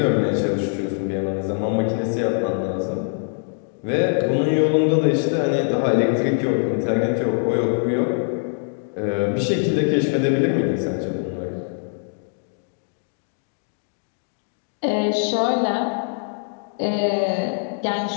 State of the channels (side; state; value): right; silent; 64 dB below the other